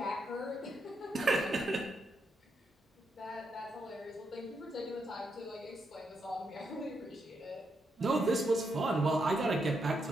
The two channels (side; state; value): both; normal; correlation 0.81